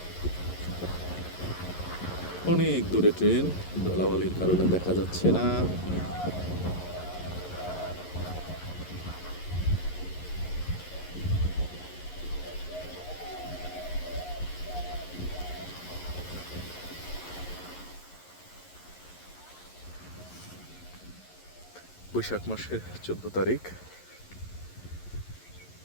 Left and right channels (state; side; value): late; right; 11 ms